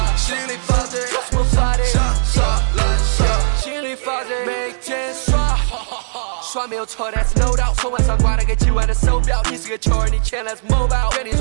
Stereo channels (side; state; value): left; silent; 65 dB below the other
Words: 心里发的，什么发的？杀来杀，心里发的，每天刷。刷没有错 ，That's no doubt。从晚上挂了个几万的手表，你是个球儿，你钱 Let's mobile。给你